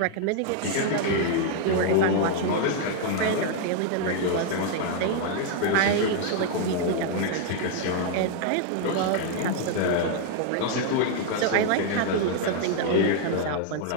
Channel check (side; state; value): both; different; correlation 0.00